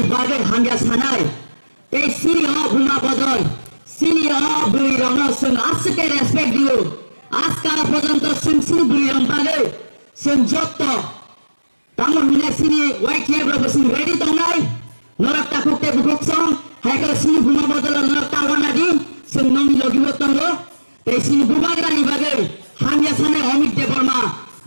বাগে হাঙ্গা সানাই এই সিনি অ ভূমা বদল সিনি অ বুড়ি রং সুন আজকে রেসপেক্ট দিও আজকাল পর্যন্ত সুন সিনি বুড়ি রং বাগে সুন যত তামন মিনা সিনি ওয়াই কেব্রা বসুন রেডি দংনাই নরক তাকুকে বুকসং হাইকা সিনি ভূমা বদল নরক তাওনা দি সুন নমি লগিব তঙ্গ এই সিনি ভূভাগরানি বাগে হাঙ্গা সানাই অমিত দেবর্মা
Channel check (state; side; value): inverted; both; correlation -1.00